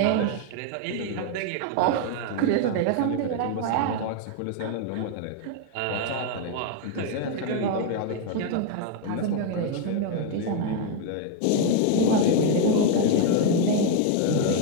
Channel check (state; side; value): different; both; correlation 0.00